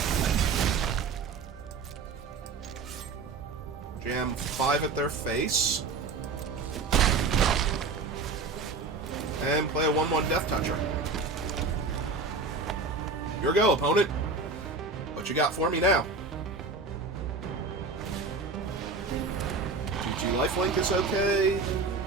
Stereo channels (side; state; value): left; quieter; 4.2 dB